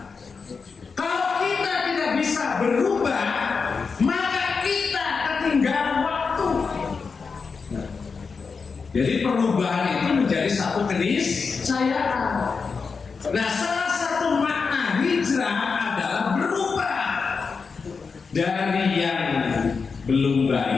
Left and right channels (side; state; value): right; quieter; 5.1 dB